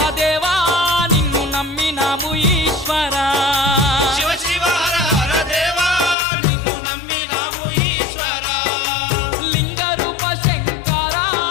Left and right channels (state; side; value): drops out; right; at 6.2 s